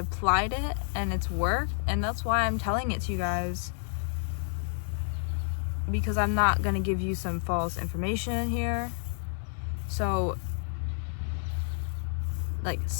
it and it's worked, and that's why I'm telling it to you guys. Because I'm not gonna give you some false information here. So, like,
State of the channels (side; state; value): right; silent; 58 dB below the other